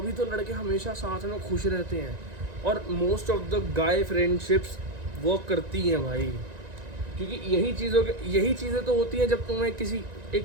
तो लड़के हमेशा साथ में खुश रहते हैं, और most of the guy friendships work करती हैं भाई, क्योंकि यही चीज़ें तो होती हैं जब तुम्हें किसी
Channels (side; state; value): left; late; 1.9 ms